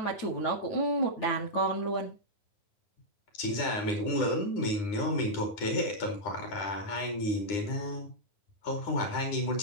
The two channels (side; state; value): right; late; 9.8 ms